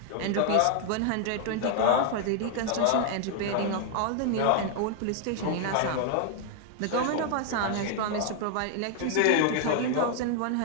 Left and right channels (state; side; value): different; both; correlation 0.00